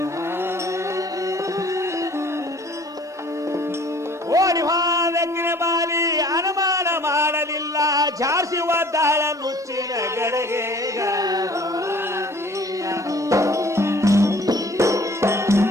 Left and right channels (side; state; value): both; normal; correlation 0.52